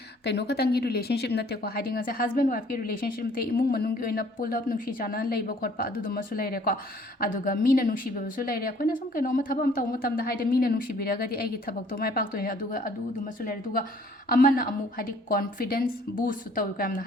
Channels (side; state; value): both; normal; correlation 0.57